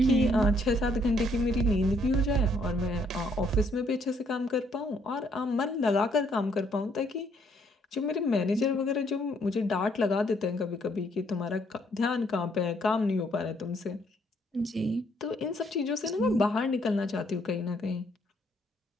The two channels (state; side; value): normal; both; correlation 0.69